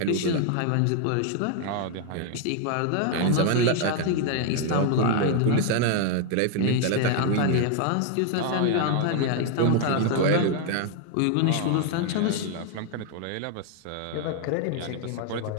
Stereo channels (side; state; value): both; different; correlation 0.00